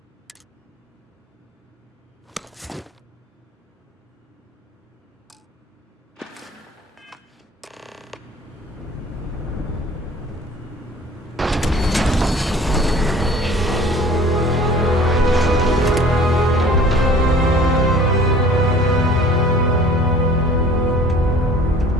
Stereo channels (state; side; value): normal; both; correlation 0.48